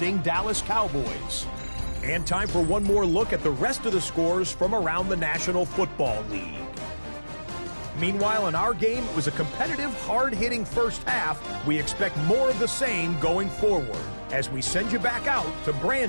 Dallas Cowboys. And time for one more look at the rest of the scores from around the National Football League. Meanwhile, in our game, it was a competitive, hard-hitting first half. We expect more of the same going forward as we send you back out to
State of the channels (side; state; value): both; inverted; correlation -1.00